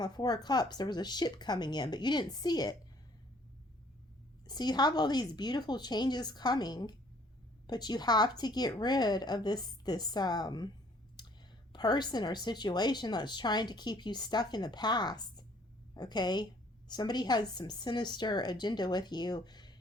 4 of Cups, there was a ship coming in, but you didn't see it. So you have all these beautiful changes coming, but you have to get rid of this person or situation that's trying to keep you stuck in the past. Okay? Somebody has some sinister agenda with you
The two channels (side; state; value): both; normal; correlation 0.60